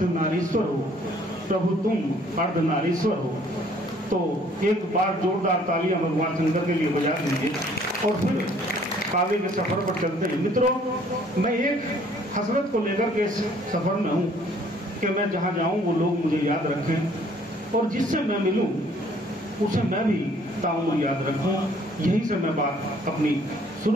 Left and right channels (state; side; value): normal; both; correlation 0.59